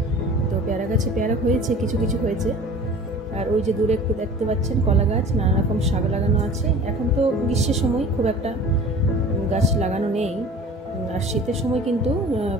তো পেয়ারা গাছে পেয়ারা হয়েছে, কিছু কিছু হয়েছে। আর ওই যে দূরে একটু দেখতে পাচ্ছেন কলা গাছ, নানা রকম শাক লাগানো আছে। এখন তো গ্রীষ্মের সময় খুব একটা গাছ লাগানো নেই, আর শীতের সময় কিন্তু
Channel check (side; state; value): both; normal; correlation 0.43